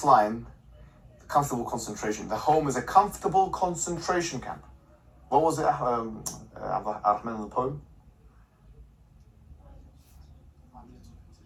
line, comfortable concentration, the home is a comfortable concentration camp. What was it, Ar-Rahman in the poem?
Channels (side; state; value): both; identical; correlation 1.00